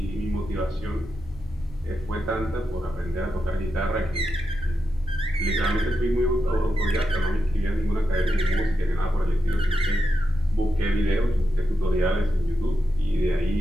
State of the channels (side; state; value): both; normal; correlation 0.87